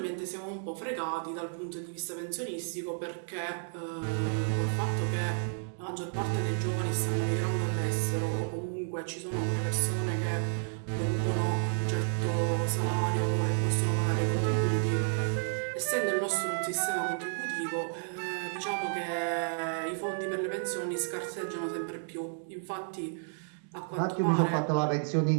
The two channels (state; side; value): silent; left; digital silence